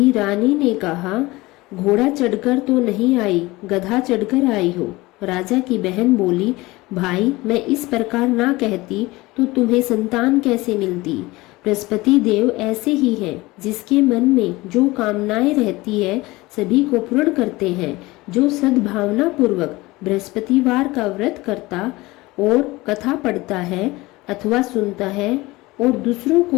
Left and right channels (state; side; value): quieter; right; 20.8 dB